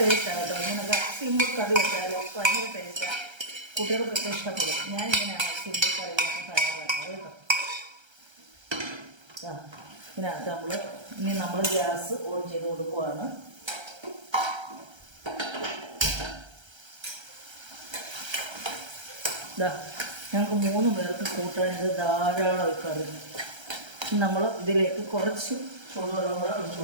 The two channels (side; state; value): left; late; 1.3 ms